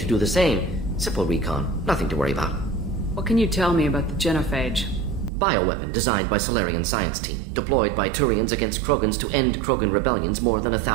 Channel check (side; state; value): left; drops out; at 5.3 s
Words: do the same. Simple recon, nothing to worry about. What can you tell me about the genophage? Bioweapon designed by Salarian science team, deployed by Turians against Krogans to end Krogan rebellions more than